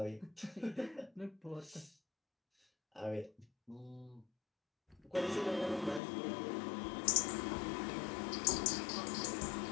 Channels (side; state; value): right; drops out; at 6.0 s